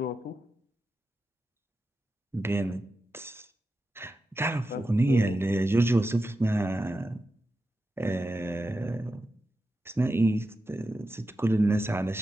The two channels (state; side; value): normal; both; correlation 0.90